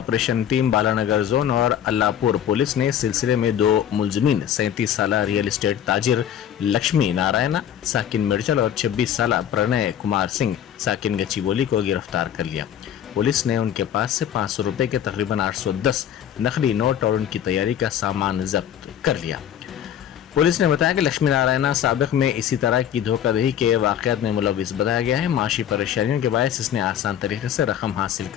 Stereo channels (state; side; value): quieter; right; 9.9 dB